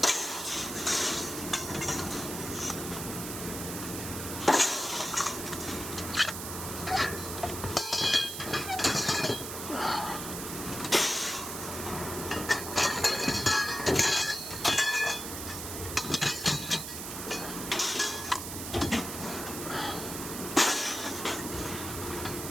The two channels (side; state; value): right; noise; hiss, 7 dB below the sound